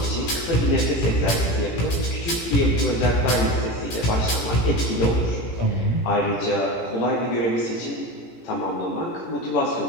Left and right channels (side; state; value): right; late; 17 ms